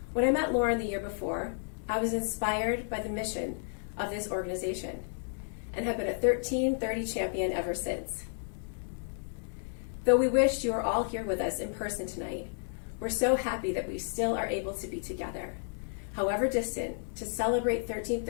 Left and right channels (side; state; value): right; silent; digital silence